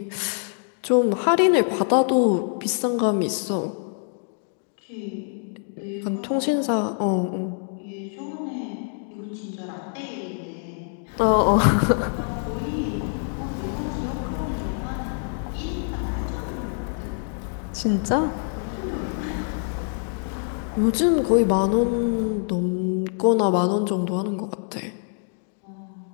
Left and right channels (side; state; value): right; silent; 57 dB below the other